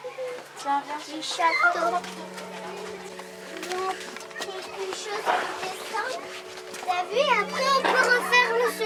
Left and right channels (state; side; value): identical; both; correlation 1.00